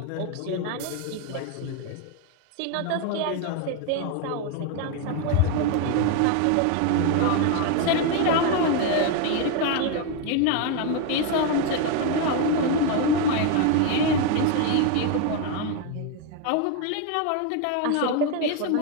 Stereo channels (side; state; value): both; different; correlation 0.01